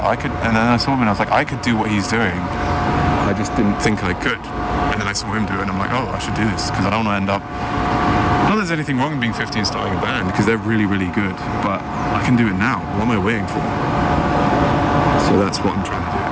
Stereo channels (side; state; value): both; identical; correlation 1.00